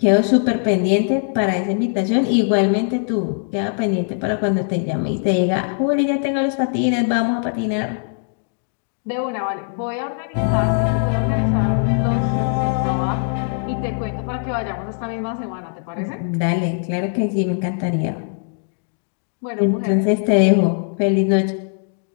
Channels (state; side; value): silent; right; 64 dB below the other